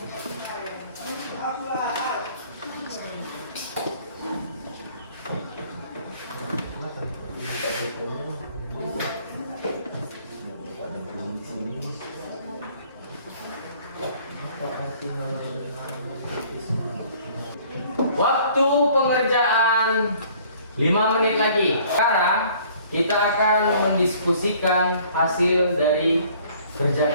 Waktu pengerjaan 5 menit lagi. Sekarang kita akan mendiskusikan hasil dari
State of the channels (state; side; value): inverted; both; correlation -0.56